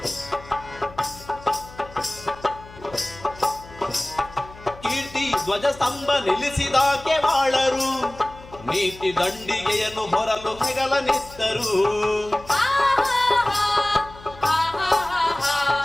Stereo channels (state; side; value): noise; left; hum, 19 dB below the sound